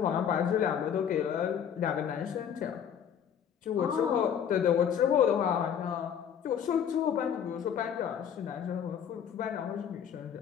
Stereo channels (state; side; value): quieter; right; 8.5 dB